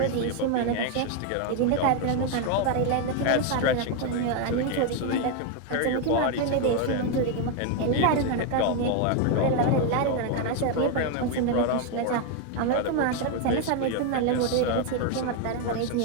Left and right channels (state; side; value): different; both; correlation 0.01